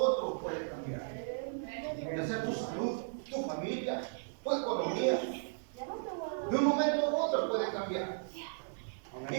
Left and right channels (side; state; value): left; silent; digital silence